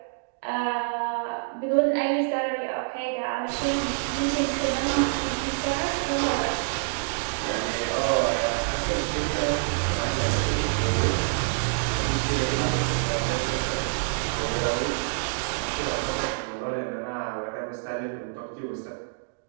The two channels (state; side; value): silent; left; digital silence